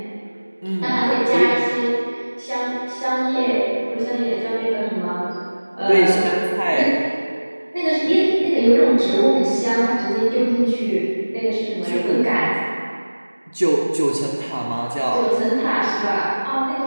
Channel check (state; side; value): inverted; both; correlation -1.00